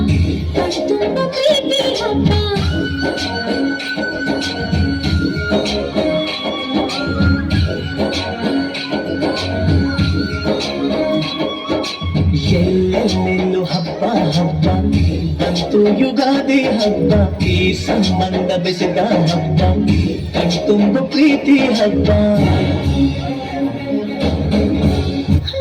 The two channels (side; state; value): both; identical; correlation 1.00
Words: ಕಣ್ತುಂಬ ಪ್ರೀತಿ ಹಬ್ಬ. ಎಲ್ಲೆಲ್ಲೆಲ್ಲೂ ಹಬ್ಬ ಹಬ್ಬ ಬಂತು ಯುಗಾದಿ ಹಬ್ಬ, ಈ ಸಂಬಂಧ ಬೆಸೆದ ಹಬ್ಬ, ಕಣ್ತುಂಬ ಪ್ರೀತಿ ಹಬ್ಬ.